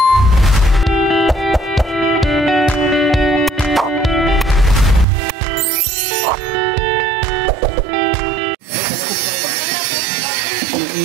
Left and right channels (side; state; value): left; drops out; at 5.1 s